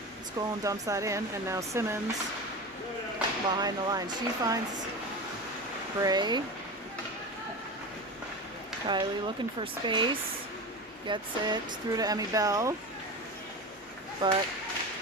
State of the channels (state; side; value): normal; both; correlation 0.27